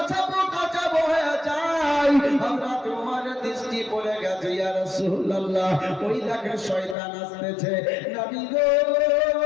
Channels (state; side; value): drops out; right; at 7.0 s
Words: হয়ে যায়, আমরা তোমার দৃষ্টি পড়ে গেছে, ইয়া রাসূলুল্লাহ, ওই দেখেন শয়তান আসতেছে। নবী গো,